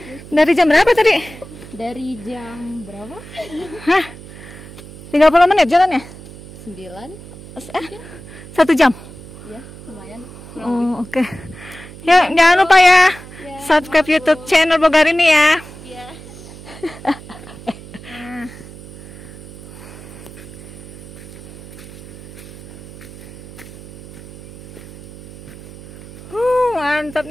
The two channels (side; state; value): right; noise; hum, 16 dB below the sound